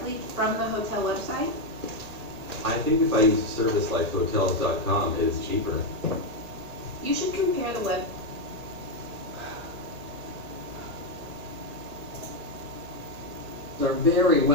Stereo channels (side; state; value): left; late; 1.8 ms